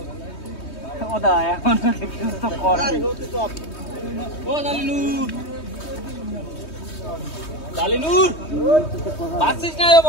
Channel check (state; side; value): late; right; 3.2 ms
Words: ওদা এখন তো কর ও দালিনুর দালিনুর বাসিস না